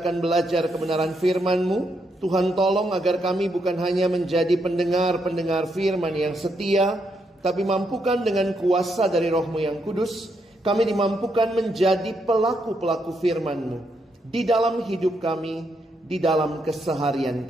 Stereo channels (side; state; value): both; normal; correlation 0.78